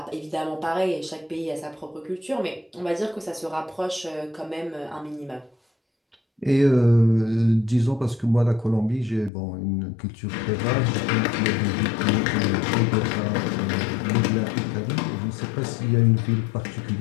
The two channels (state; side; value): drops out; right; at 9.3 s